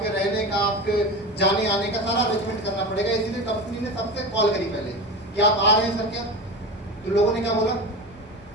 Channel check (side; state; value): both; normal; correlation 0.27